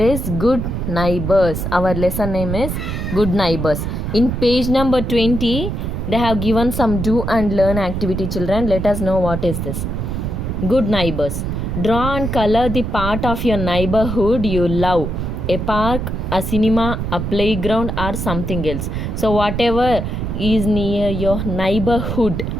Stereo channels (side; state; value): right; noise; rumble, 3 dB below the sound